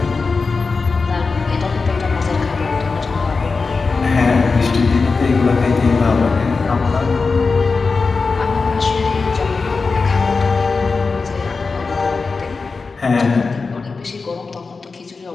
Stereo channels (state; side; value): quieter; right; 4.4 dB